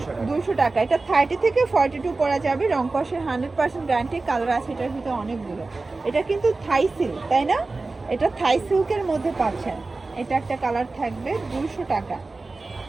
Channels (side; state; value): left; quieter; 3.5 dB